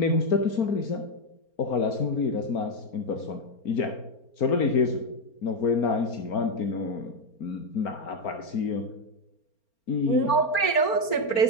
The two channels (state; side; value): late; right; 4.4 ms